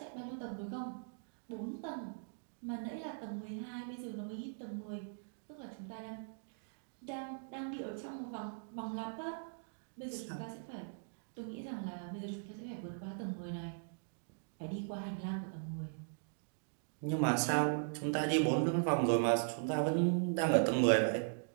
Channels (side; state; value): left; silent; digital silence